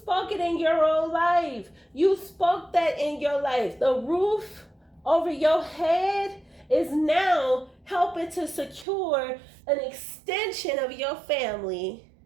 it in your own life. You spoke that in your life. The roof over your head is now helping to secure an extension of your family.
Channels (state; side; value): drops out; left; at 8.8 s